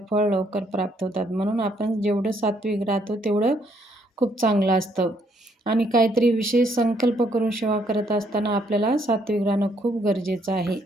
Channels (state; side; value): normal; both; correlation 0.70